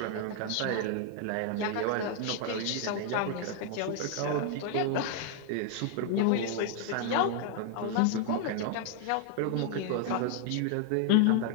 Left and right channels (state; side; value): different; both; correlation 0.00